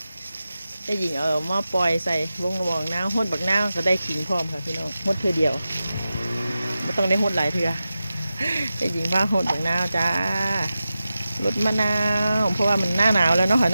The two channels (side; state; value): both; inverted; correlation -0.93